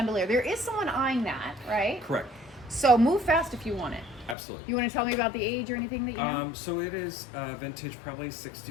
There is someone eyeing that, right? Correct. So move fast if you want it. Absolutely. You want to tell me about the age or anything that you know? So it is vintage, probably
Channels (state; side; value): drops out; right; at 4.4 s